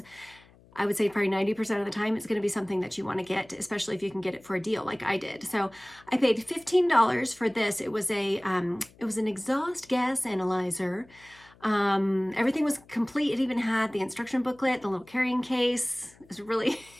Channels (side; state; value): left; noise; hum, 27 dB below the sound